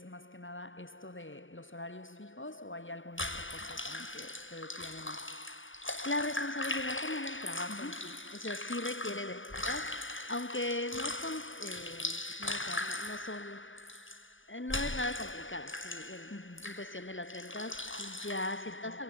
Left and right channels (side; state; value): right; late; 0.57 ms